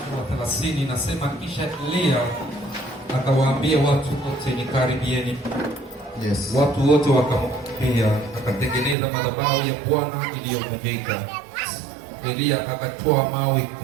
wa 30 inasema, kisha Elia akawaambia watu wote, nikaribieni. Yes. Watu wote wakamwambia, akatengeneza madhabahu ya Bwana iliyovunjika. Elia akatoa mawe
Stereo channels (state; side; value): drops out; left; at 9.0 s